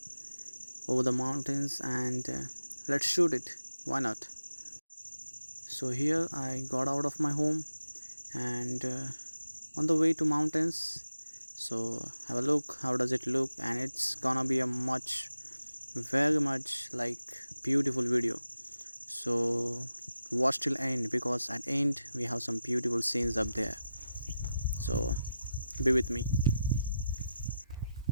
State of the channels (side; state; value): both; inverted; correlation -0.89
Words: over the mountains and let's shoot it. Why not? So here I got out of my home and on the way to mountains. So have a look. How does it look? And it's gonna be a very much like beautiful video. So watch till end because at end we have some beautiful scenes up there. So be with me.